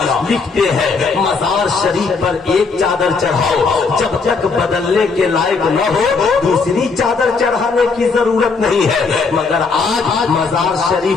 लिखते हैं, मजार शरीफ पर एक चादर चढ़ाओ, जब तक बदलने के लायक न हो दूसरी चादर चढ़ाने की जरूरत नहीं है। मगर आज मजार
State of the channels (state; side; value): quieter; right; 4.6 dB